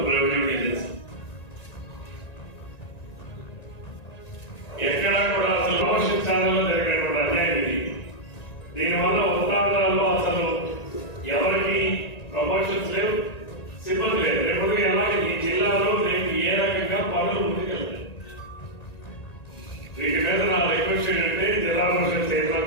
రెవెన్యూ డివిజన్స్. ఎక్కడా కూడా అసలు ప్రమోషన్లో జరిగినటువంటి అన్యాయం ఇది. దీనివల్ల ఉత్తరాంధ్రాల్లో అసలు ఎవరికి ప్రమోషన్స్ లేవు, సిబ్బంది లేదు. రేపు అలాగే ఈ జిల్లాలో రేపు ఏ రకంగా పనులు ముందుకెళ్తాయి. వీటి మీద నా రిక్వెస్ట్ ఏంటంటే జిల్లా పరిషత్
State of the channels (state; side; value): late; right; 1.9 ms